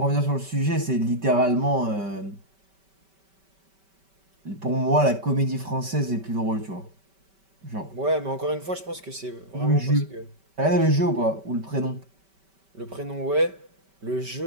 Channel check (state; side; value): late; left; 5.2 ms